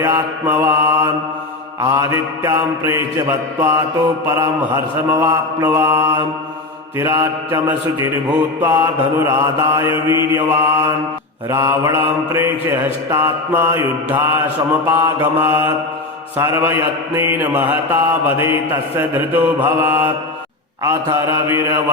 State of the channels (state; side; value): quieter; right; 3.1 dB